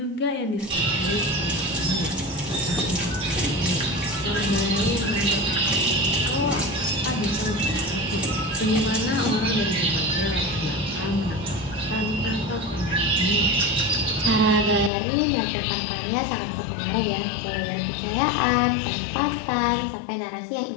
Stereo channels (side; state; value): right; drops out; at 14.9 s